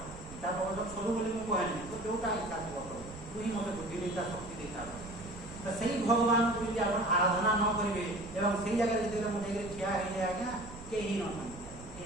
ତା ପ୍ରବଚନ ସବୁ ବୋଲି ମୁଁ କହେନି, ତୁ ଯୋଉଟା ଇଚ୍ଛା ଥିବ ପ୍ରଭୁ, ତୁ ହିଁ ମୋତେ ବୁଦ୍ଧି ଦେଇତା, ଶକ୍ତି ଦେଇତା। ତ ସେଇ ଭଗବାନଙ୍କୁ ଯଦି ଆପଣ ଆରାଧନା ନ କରିବେ ଏବଂ ସେଇ ଜାଗାରେ ଯେତେବେଳେ ମୁଁ ଯାଇକରି ଠିଆ ହେଇଯାଏ ଆଜ୍ଞା, କେହି ନଥାନ୍ତି,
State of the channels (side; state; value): right; noise; rumble, 15 dB below the sound